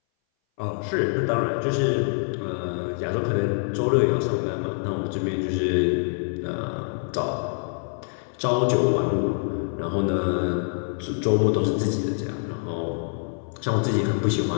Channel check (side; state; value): right; silent; 59 dB below the other